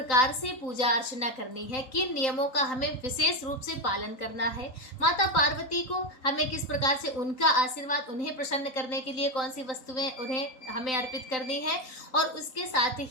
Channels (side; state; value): right; late; 3.9 ms